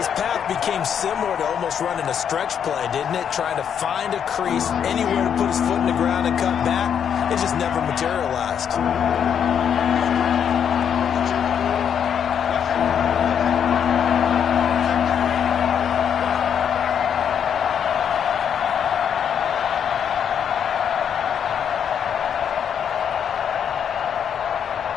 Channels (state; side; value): quieter; right; 8.2 dB